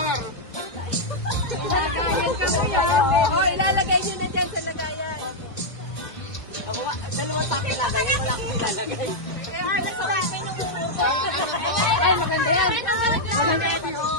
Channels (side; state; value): right; late; 2.2 ms